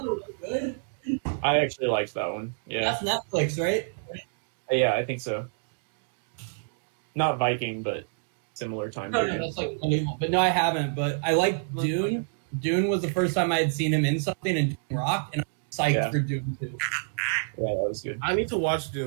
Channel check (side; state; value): left; silent; digital silence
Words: good. I actually liked that one. Yeah. That's Netflix, right? Yeah, I think so. Not Viking, but similar time period. No, that's unbelievable. But no, I haven't. But I like Dune. Dune was the first time I had seen him in something, and Dune rocked, and I'm psyched for Dune too. Yeah, that was good. I need to watch